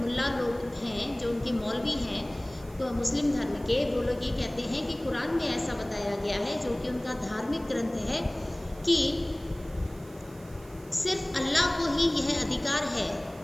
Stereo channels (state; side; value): noise; right; hiss, 24 dB below the sound